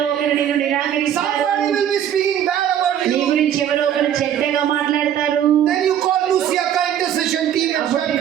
ఒకరు నిన్ను నిరాకరిస్తారు. Somebody will be speaking bad about నీ you. గురించి ఎవరో ఒకరు చెడ్డగా మాట్లాడతారు. Then you call Luciaka intercession team and start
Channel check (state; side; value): quieter; left; 10.1 dB